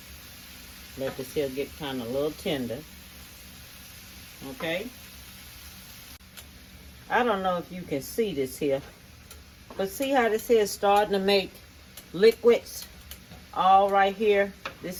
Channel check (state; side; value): identical; both; correlation 1.00